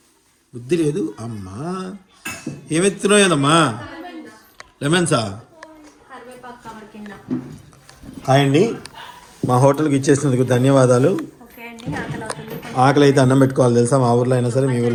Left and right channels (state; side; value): identical; both; correlation 1.00